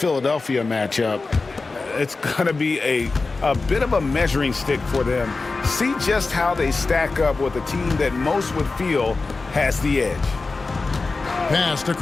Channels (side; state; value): right; quieter; 3.8 dB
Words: matchup, it's going to be a bit of a measuring stick for them. See just how they stack up with a team that most would feel has the edge. Pass to